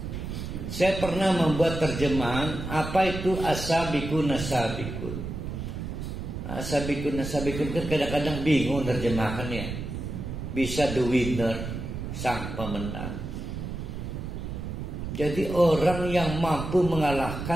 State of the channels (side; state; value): right; noise; rumble, 6 dB below the sound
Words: Saya pernah membuat terjemahan apa itu as-sabiqun as-sabiqun. As-sabiqun as-sabiqun kan kadang-kadang bingung terjemahannya. Bisa the winner, sang pemenang. Jadi orang yang mampu